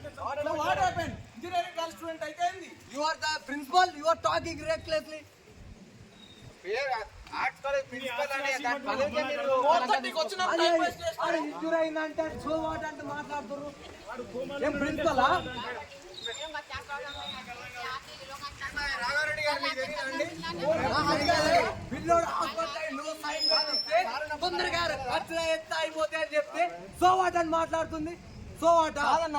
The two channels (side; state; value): both; identical; correlation 1.00